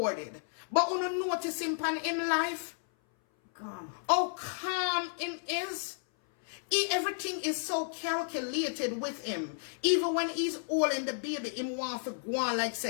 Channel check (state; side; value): silent; right; 56 dB below the other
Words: But when you notice him pan in life, calm. How calm him is. Everything is so calculated with him. Even when he's holding the baby, him want to go on like